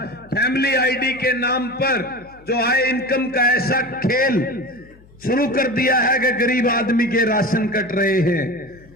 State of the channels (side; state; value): left; noise; hum, 26 dB below the sound